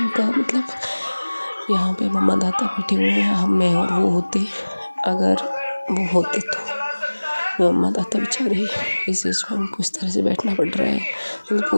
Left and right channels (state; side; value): inverted; both; correlation -1.00